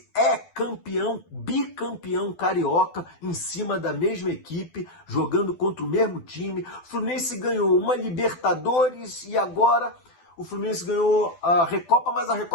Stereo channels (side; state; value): right; late; 12 ms